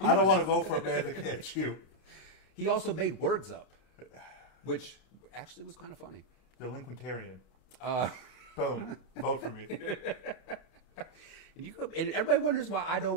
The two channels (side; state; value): right; late; 31 ms